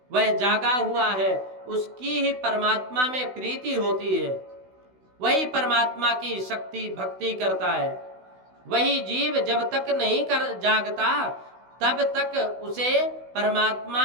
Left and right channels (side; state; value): left; late; 16 ms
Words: वह जागा हुआ है, उसकी ही परमात्मा में प्रीति होती है, वही परमात्मा की शक्ति भक्ति करता है। वही जीव जब तक नहीं कर जागता तब तक उसे